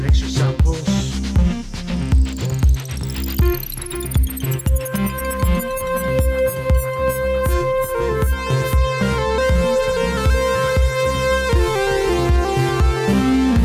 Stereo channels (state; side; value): identical; both; correlation 1.00